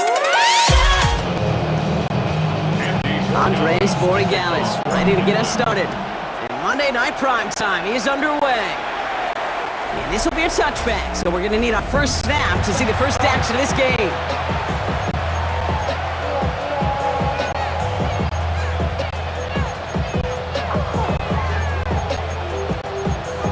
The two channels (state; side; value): identical; both; correlation 1.00